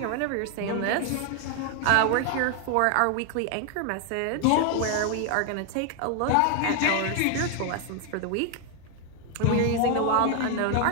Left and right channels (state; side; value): different; both; correlation 0.01